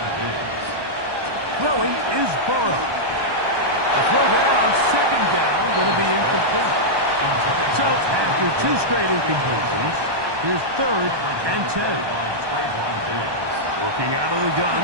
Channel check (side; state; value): left; late; 1.2 ms